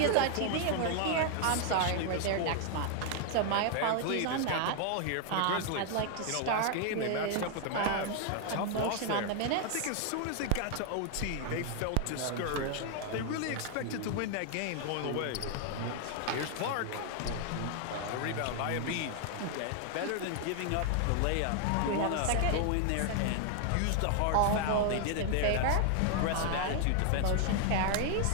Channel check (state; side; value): different; both; correlation 0.00